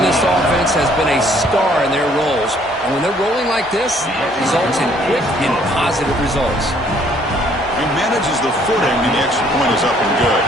this offense has been a star in their roles. And when they're rolling like this, it results in quick and positive results. He manages the footing, and the extra point is up and good.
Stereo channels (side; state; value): both; normal; correlation 0.63